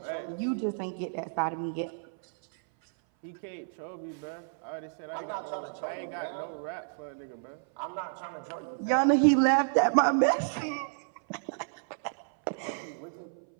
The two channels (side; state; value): left; silent; 57 dB below the other